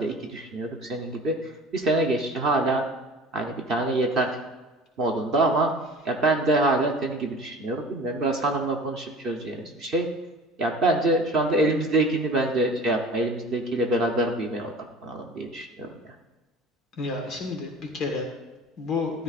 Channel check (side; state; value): both; normal; correlation 0.41